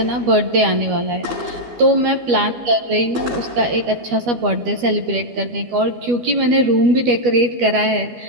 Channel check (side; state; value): left; late; 12 ms